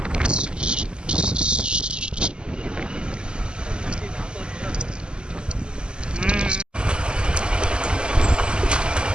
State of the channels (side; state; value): left; late; 0.049 ms